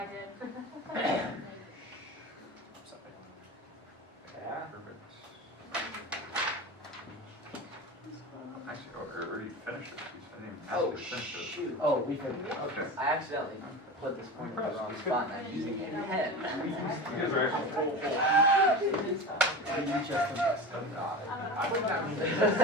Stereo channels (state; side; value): normal; both; correlation 0.29